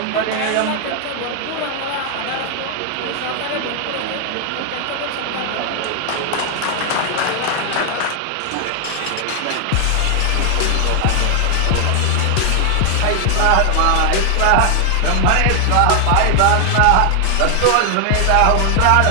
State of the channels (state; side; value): different; both; correlation 0.00